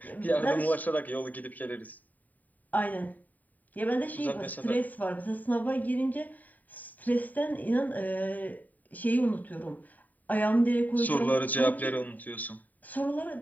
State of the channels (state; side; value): late; right; 0.081 ms